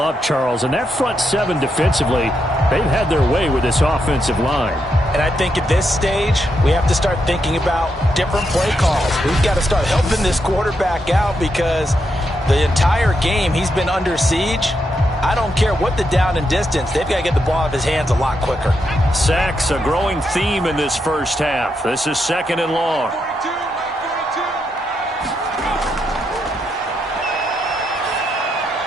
Charles. And that front 7 defensively, they've had their way with this offensive line. And I think at this stage, we have to start thinking about different play calls. We've got to start helping this quarterback out because the entire game he's been under siege. I don't care what the down and distance. They've got to get the ball out of his hands a lot quicker. Sacks, a growing theme in this first half. This is 2nd and long.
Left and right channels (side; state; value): both; normal; correlation 0.82